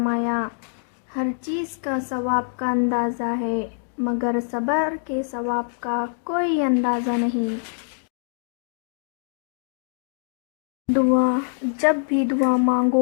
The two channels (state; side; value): silent; right; digital silence